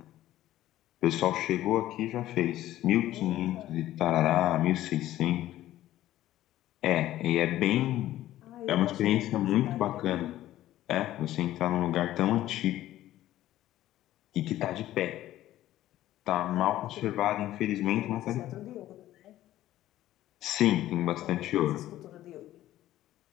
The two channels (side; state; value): right; quieter; 14.1 dB